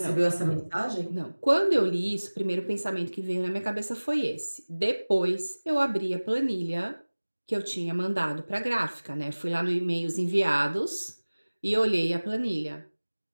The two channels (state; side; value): inverted; both; correlation -1.00